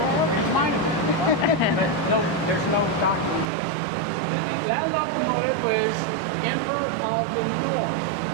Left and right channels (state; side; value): drops out; left; at 3.5 s